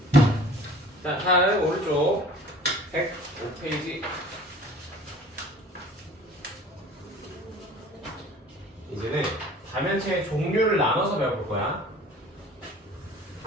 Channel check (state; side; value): normal; both; correlation 0.46